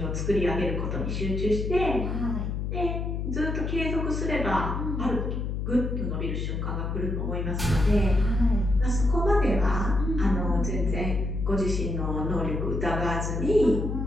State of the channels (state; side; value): noise; left; hum, 2 dB below the sound